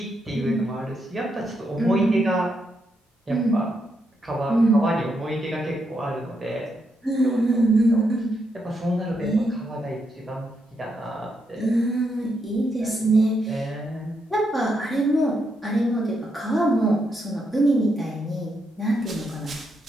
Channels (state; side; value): normal; both; correlation 0.80